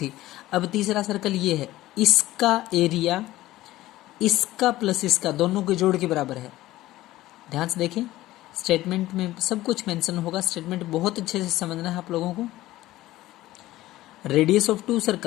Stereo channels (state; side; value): quieter; right; 16.2 dB